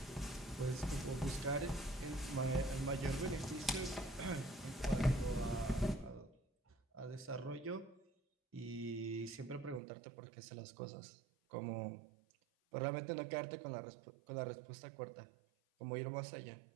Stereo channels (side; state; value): left; drops out; at 9.8 s